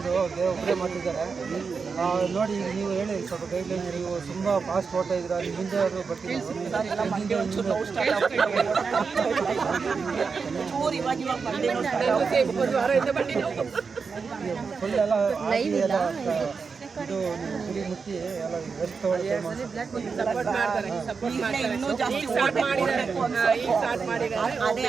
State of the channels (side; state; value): left; quieter; 5.2 dB